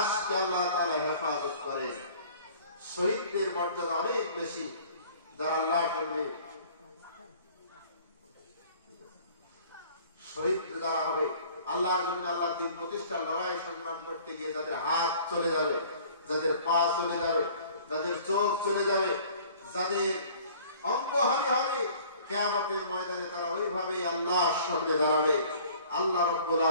আল্লাহ তাআলা হেফাজত করেন। শহীদদের মর্যাদা অনেক বেশি, যারা আল্লাহর জন্য শহীদ যারা হবে, আল্লাহর জন্য আল্লাহর দ্বীন প্রতিষ্ঠার লড়াই সংগ্রাম করতে গিয়ে যাদের হাত চলে যাবে, যাদের পা চলে যাবে, যাদের চোখ চলে যাবে, যাদের অঙ্গহানি হবে, কিয়ামতের ময়দানে তারা ওইভাবে আল্লাহর সামনে দাঁড়াবে। আল্লাহ রাব্বুল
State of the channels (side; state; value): both; inverted; correlation -0.51